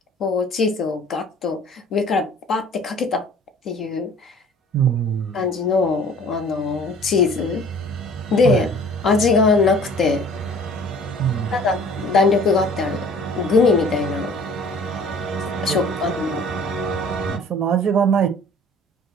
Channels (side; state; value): both; normal; correlation 0.50